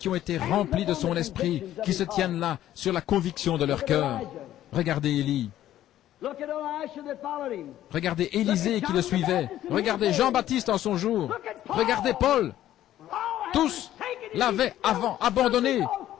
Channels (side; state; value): right; quieter; 12.8 dB